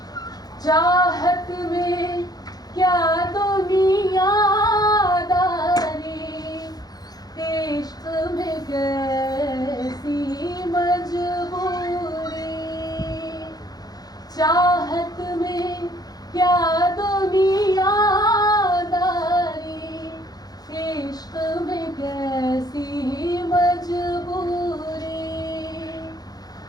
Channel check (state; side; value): late; right; 0.19 ms